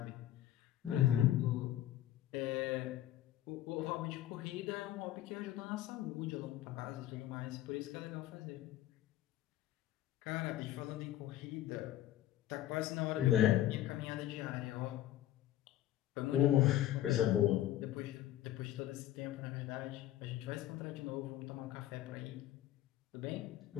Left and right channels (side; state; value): right; quieter; 13.3 dB